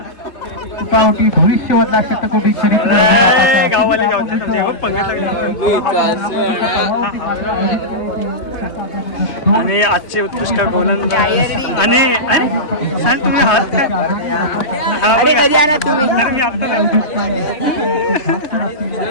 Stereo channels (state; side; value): late; right; 3.2 ms